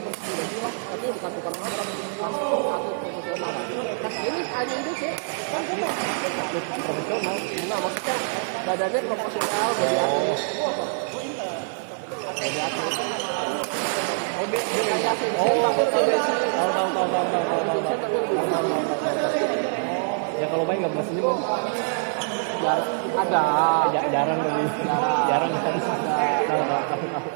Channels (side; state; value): left; silent; digital silence